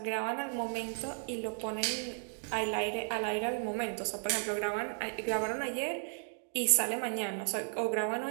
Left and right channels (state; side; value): silent; left; 55 dB below the other